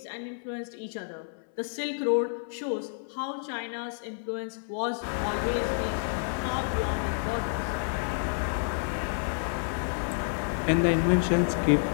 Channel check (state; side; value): silent; right; 58 dB below the other